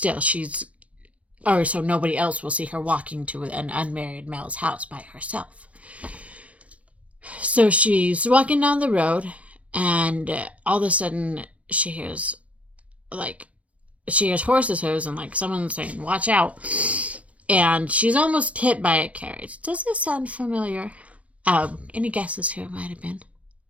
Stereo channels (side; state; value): left; late; 0.065 ms